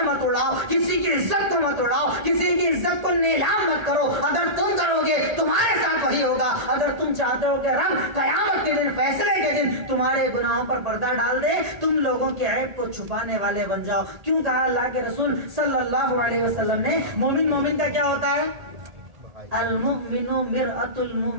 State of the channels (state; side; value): late; left; 1.8 ms